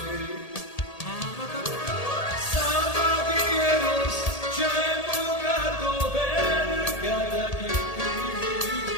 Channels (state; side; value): late; right; 1.8 ms